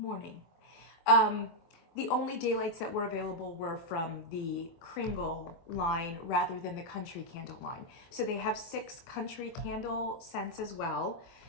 The only daylights that were available were from the Kringle line rather than the country candle line. So they have 6 country candle scents as well.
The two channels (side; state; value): right; late; 24 ms